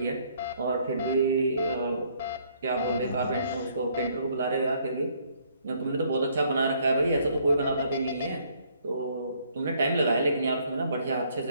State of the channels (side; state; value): both; inverted; correlation -0.66